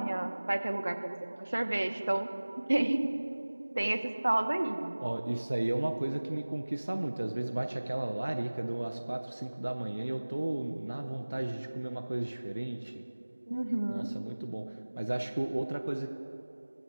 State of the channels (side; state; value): both; inverted; correlation -1.00